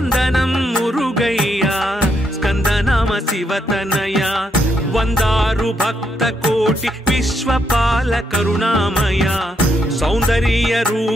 విశ్వపాల కరుణామయ సౌందర్య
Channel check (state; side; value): normal; both; correlation 0.77